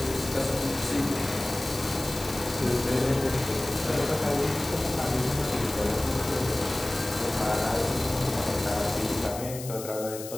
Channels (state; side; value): noise; left; hiss, 11 dB below the sound